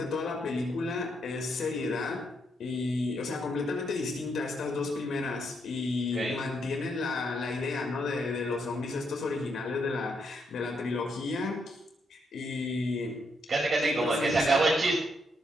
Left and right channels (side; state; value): both; normal; correlation 0.77